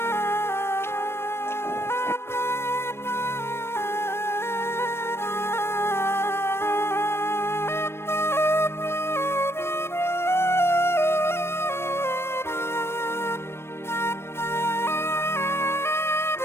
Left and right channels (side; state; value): right; late; 0.12 ms